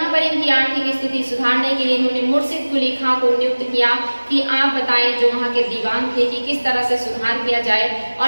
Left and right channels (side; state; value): both; inverted; correlation -1.00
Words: पर इनकी आर्थिक स्थिति सुधारने के लिए इन्होंने मुर्शिद कुली खां को नियुक्त किया कि आप बताएं, जो वहाँ के दीवान थे, कि किस तरह से सुधार किया जाए।